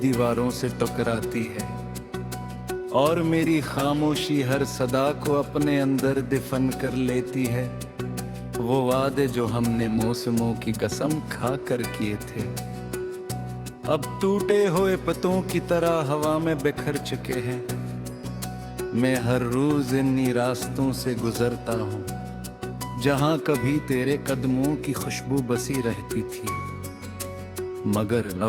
से टकराती है, और मेरी खामोशी हर सदा को अपने अंदर दफन कर लेती है। वो वादे जो हमने मौसमों की कसम खा कर किए थे, अब टूटे हुए पत्तों की तरह हवा में बिखर चुके हैं। मैं हर रोज इन्हीं रास्तों से गुजरता हूँ, जहाँ कभी तेरे कदमों की खुशबू बसी रहती थी, मगर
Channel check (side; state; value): both; identical; correlation 1.00